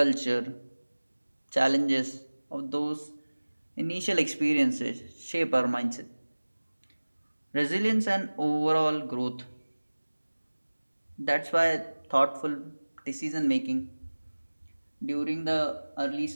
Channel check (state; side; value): inverted; both; correlation -1.00